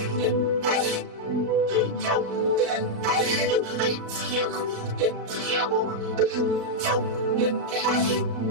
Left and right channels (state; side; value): late; left; 36 ms